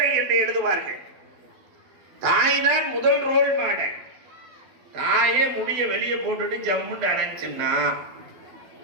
என்று எழுதுவார்கள். தாய் தான் முதல் ரோல் மாடல். தாயே முடிய வெளியே போட்டுட்டு ஜம்முண்டு அடைச்சுன்னா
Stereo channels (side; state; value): left; late; 12 ms